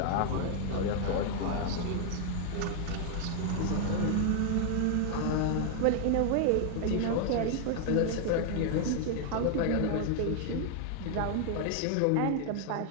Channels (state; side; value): different; both; correlation 0.00